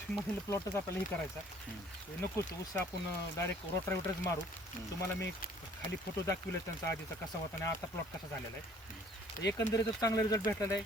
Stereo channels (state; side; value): normal; both; correlation 0.56